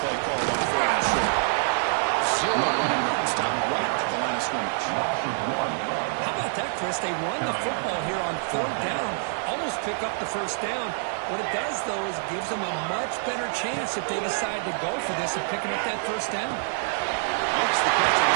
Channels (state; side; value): silent; left; 61 dB below the other